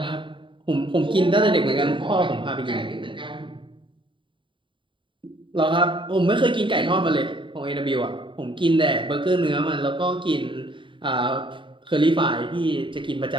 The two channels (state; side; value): late; left; 0.24 ms